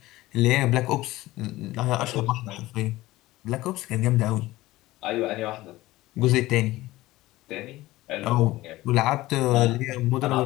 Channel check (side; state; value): right; quieter; 17.9 dB